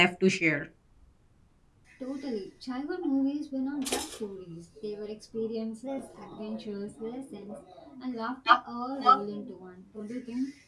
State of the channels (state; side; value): identical; both; correlation 1.00